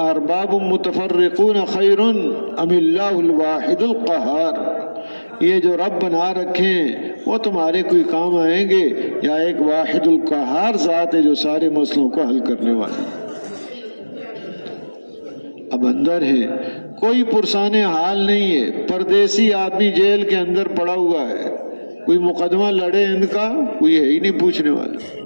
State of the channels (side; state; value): both; inverted; correlation -1.00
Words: متفرقون خیر ام اللہ الواحد القہار، یہ جو رب بنا رکھے ہیں وہ تمہارے کوئی کام آئیں گے، یا ایک واحد القہار ذات ہے جو سارے مسئلوں کو حل کرنے والا۔ اب اندر ہے، کوئی پرسان حال نہیں ہے، پردیسی آدمی جیل کے اندر پڑا ہوا ہے، کوئی مقدمہ لڑے ان کا کوئی ہے ہی نہیں پوچھنے والا،